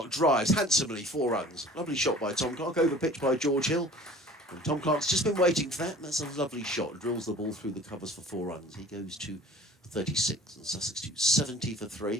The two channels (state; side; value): normal; both; correlation 0.46